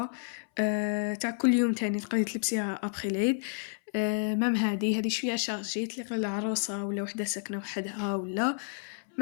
تاع كل يوم تاني تقدري تلبسيها ابخي العيد. مام هذه شويه شارجي تليق للعروسه ولا وحده ساكنه وحدها, ولا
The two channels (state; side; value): silent; right; 57 dB below the other